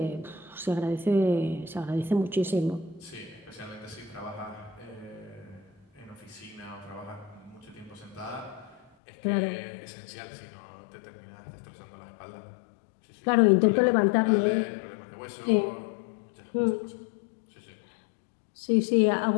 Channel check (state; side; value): drops out; right; at 8.8 s